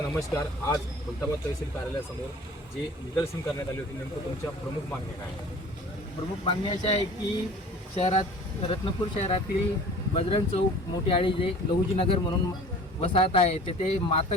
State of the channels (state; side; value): normal; both; correlation 0.45